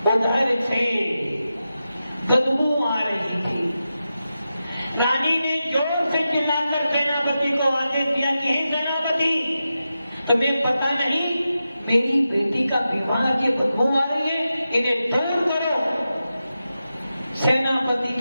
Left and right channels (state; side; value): inverted; both; correlation -0.91